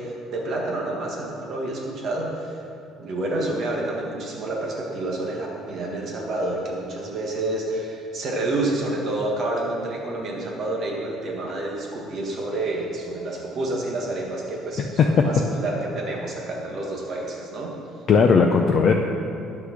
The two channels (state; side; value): normal; both; correlation 0.60